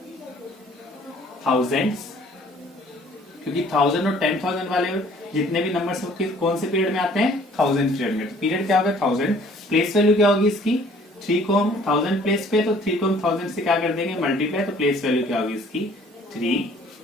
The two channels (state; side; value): normal; both; correlation 0.56